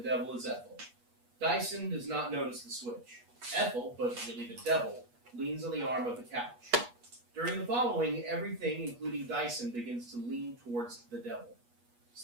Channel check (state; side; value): late; left; 8.3 ms